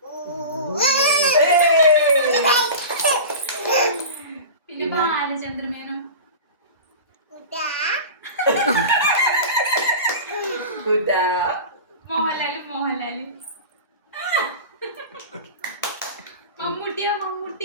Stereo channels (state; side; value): inverted; both; correlation -0.32